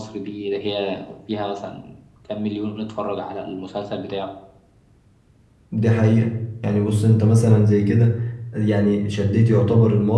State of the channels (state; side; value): identical; both; correlation 1.00